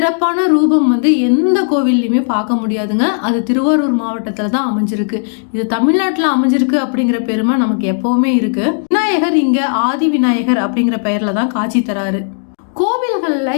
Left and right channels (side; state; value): right; silent; digital silence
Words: ரூபம் எந்த கோவில்லையுமே பார்க்க முடியாதுங்க. அது திருவாரூர் மாவட்டத்துல தான் அமைஞ்சிருக்கு. இது தமிழ்நாட்டுல அமைஞ்சிருக்கு அப்படிங்கிற பெருமை நமக்கு எப்பவுமே இருக்கு. விநாயகர் இங்க ஆதி விநாயகர் அப்படிங்கிற பெயர்ல தான் காட்சி தராரு. கோவில்கள்ல